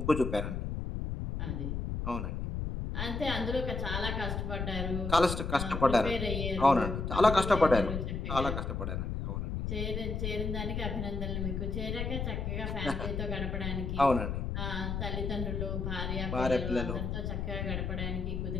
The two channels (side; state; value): left; noise; rumble, 2 dB below the sound